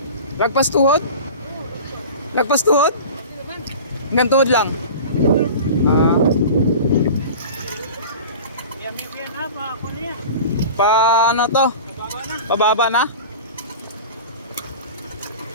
Lagpas tuhod? Lagpas tuhod? Hanggang tuhod lang? Pa ano to? Pababa na?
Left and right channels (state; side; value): inverted; both; correlation -0.36